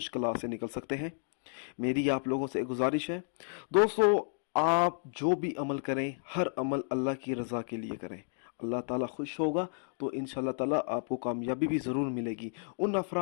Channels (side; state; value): right; silent; digital silence